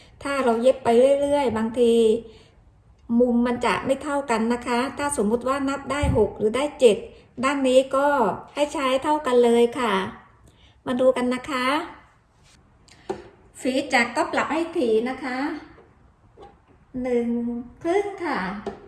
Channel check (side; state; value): both; identical; correlation 1.00